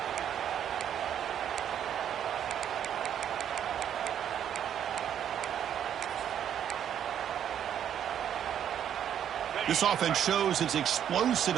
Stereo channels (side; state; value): left; quieter; 9.6 dB